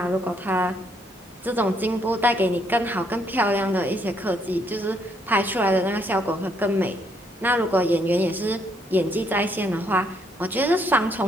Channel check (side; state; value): both; normal; correlation 0.71